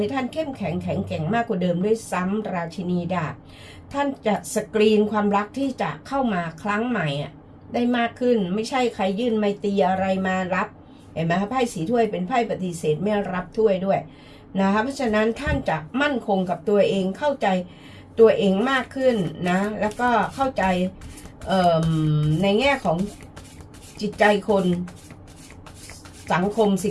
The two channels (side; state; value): both; identical; correlation 1.00